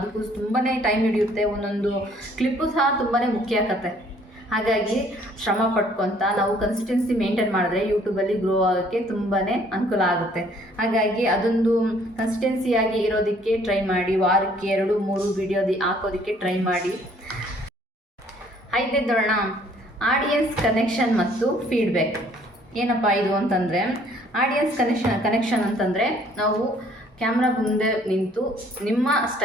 ತುಂಬಾ ಟೈಮ್ ಹಿಡಿಯುತ್ತೆ. ಒಂದೊಂದು ಕ್ಲಿಪ್ಪು ಸಹ ತುಂಬಾ ಮುಖ್ಯ ಆಗುತ್ತೆ. ಹಾಗಾಗಿ ಶ್ರಮ ಪಡ್ಕೊತ ನಾವು ಕನ್ಸಿಸ್ಟೆನ್ಸಿ ಮೇಂಟೈನ್ ಮಾಡಿದ್ರೆ ಯೂಟ್ಯೂಬಲ್ಲಿ ಗ್ರೋ ಆಗೋಕ್ಕೆ ತುಂಬಾ ಅನುಕೂಲ ಆಗುತ್ತೆ. ಹಾಗಾಗಿ ಅದೊಂದು ಕನ್ಸಿಸ್ಟೆನ್ಸಿಯಾಗಿ ಇರೋದಕ್ಕೆ ಟ್ರೈ ಮಾಡಿ. ವಾರಕ್ಕೆ 2-3 ವಿಡಿಯೋ ಹಾಕೋದಕ್ಕೆ ಟ್ರೈ ಮಾಡಿ. 5ನೇದು ನೋಡೋಣ, ಆಡಿಯನ್ಸ್ ಕನೆಕ್ಷನ್ ಮತ್ತು ಫೀಡ್ಬ್ಯಾಕ್. ಏನಪ್ಪ ಇದು ಅಂತಂದರೆ, ಆಡಿಯನ್ಸ್ ಕನೆಕ್ಷನ್ ಅಂತಂದರೆ ನಾವು ಕ್ಯಾಮ್ರಾ ಮುಂದೆ ನಿಂತು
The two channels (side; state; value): both; normal; correlation 0.60